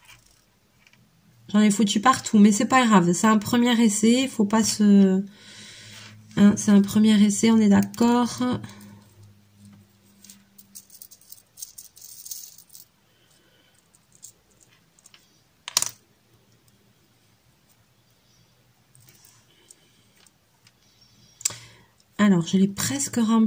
J'en ai foutu partout, mais c'est pas grave. C'est un premier essai. Faut pas se... Hein, c'est un premier essai, on est d'accord. Alors, je l'ai presque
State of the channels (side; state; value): both; identical; correlation 1.00